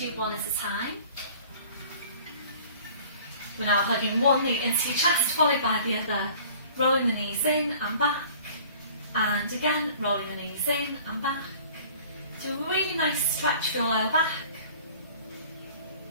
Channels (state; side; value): inverted; both; correlation -0.49